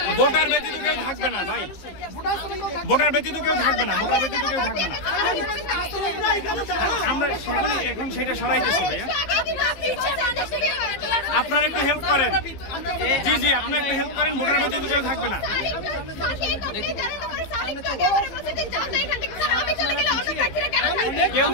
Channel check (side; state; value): right; late; 15 ms